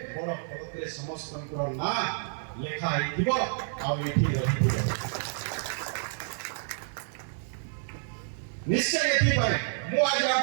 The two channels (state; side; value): silent; left; digital silence